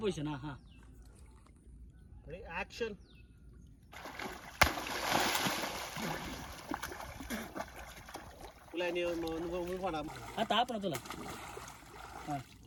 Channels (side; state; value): both; identical; correlation 1.00